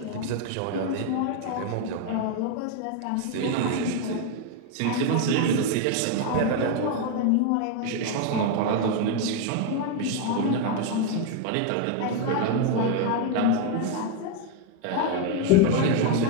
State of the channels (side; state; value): both; different; correlation 0.01